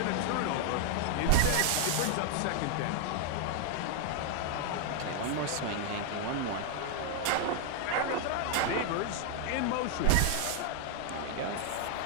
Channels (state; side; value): different; both; correlation 0.00